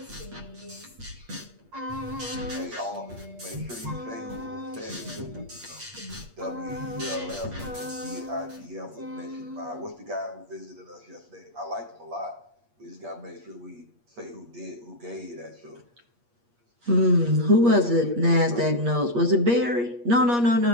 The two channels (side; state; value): left; late; 8.4 ms